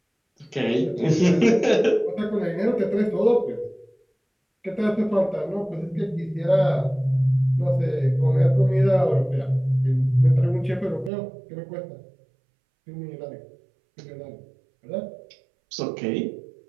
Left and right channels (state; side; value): drops out; left; at 11.1 s